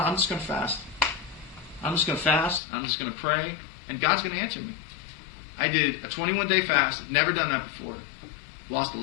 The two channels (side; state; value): right; drops out; at 2.6 s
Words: I'm just going to fast. I'm just going to fast. I'm just going to pray. And God's going to answer me. I did a 21-day fast. Never done that before. Lost a